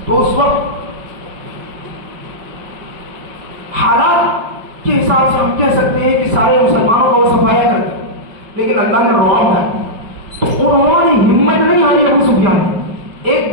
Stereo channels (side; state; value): left; late; 5.0 ms